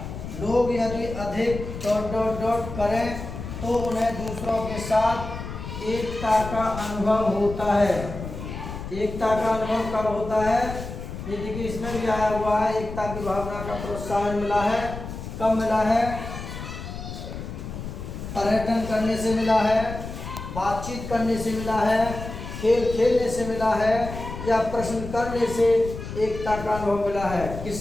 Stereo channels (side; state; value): left; noise; rumble, 9 dB below the sound